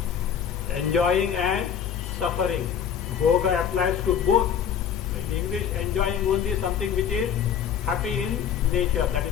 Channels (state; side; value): quieter; right; 8.2 dB